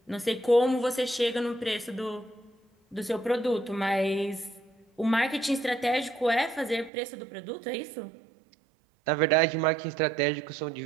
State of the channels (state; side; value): drops out; left; at 6.9 s